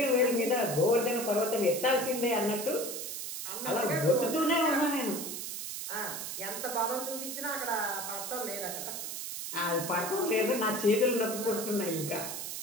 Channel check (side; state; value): right; noise; hiss, 6 dB below the sound